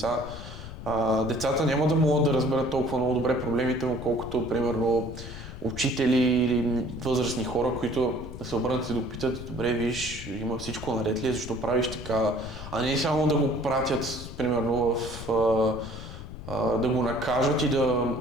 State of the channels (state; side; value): noise; left; rumble, 11 dB below the sound